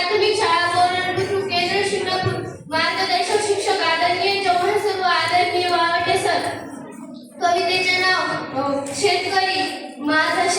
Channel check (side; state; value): both; identical; correlation 1.00